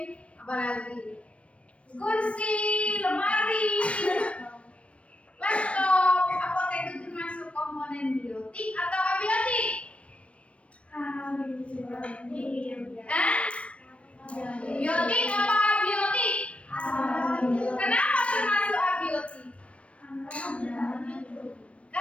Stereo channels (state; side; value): late; right; 0.062 ms